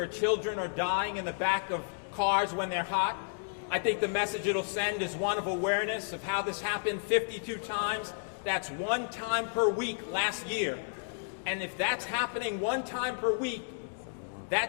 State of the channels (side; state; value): right; silent; digital silence